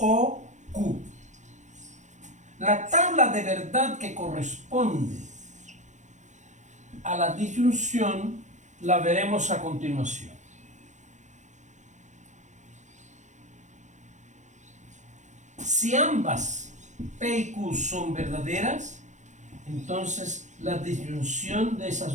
Q. La tabla de verdad que corresponde a la disyunción la veremos a continuación. Si ambas P y Q son verdaderas, entonces la disyunción de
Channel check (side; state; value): left; late; 0.35 ms